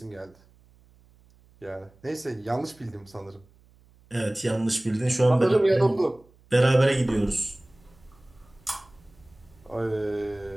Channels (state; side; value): noise; right; hum, 29 dB below the sound